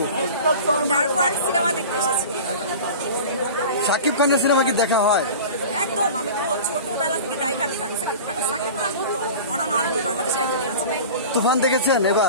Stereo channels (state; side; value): inverted; both; correlation -0.36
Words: ডার্ক ওয়ার্ল্ড সিনেমা দেখতে এসেছি। শাকিব খানের সিনেমা কি দেখা হয়? একদম, আমি তো ছোটবেলা থেকে die hard fan Shakib Khan. Shakib Khan তো অন অ্যান্ড অনলি বাংলাদেশে একজনই আছে। তুফান দেখেছেন?